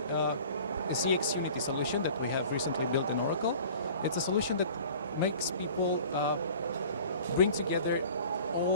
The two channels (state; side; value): inverted; both; correlation -0.45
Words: a CX Unity solution that we have recently built in Oracle. It's a solution that makes people bring together